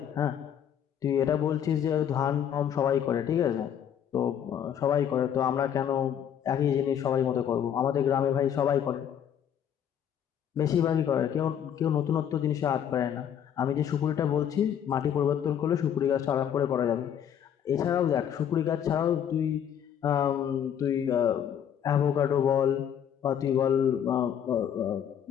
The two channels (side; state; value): right; quieter; 9.1 dB